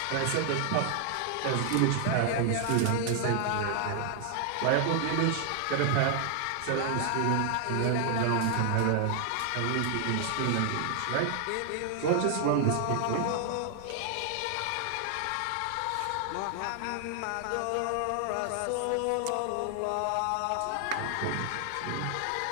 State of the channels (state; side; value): different; both; correlation 0.00